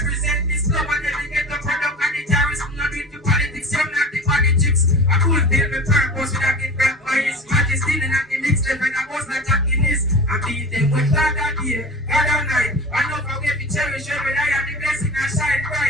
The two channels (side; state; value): both; normal; correlation 0.34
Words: this club and then we get the product and the terrorists. Not do it to politics, you're not the politics. I could build my purpose with a gift back by his majesty. And I can mix them and I was not attacking this. I beat them with God that day, God that night. I know how we cherish every day and the blessing I shine